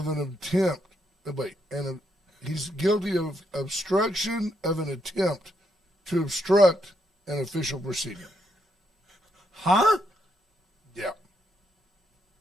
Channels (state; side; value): normal; both; correlation 0.78